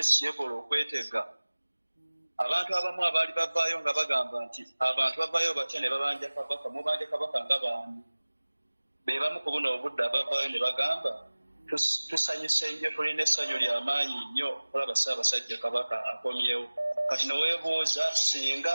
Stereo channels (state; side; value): inverted; both; correlation -1.00